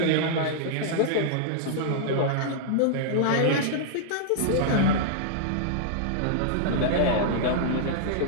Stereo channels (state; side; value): different; both; correlation -0.01